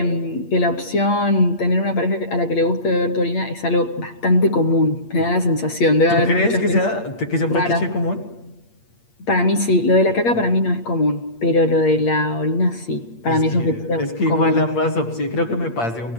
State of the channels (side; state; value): right; late; 8.6 ms